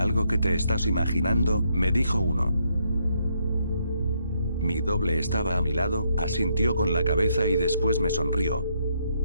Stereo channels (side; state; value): both; inverted; correlation -0.75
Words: que te estás imaginando», me dijo uno. Mi doble estaba a mi lado, asintió con la cabeza y después me sonrió.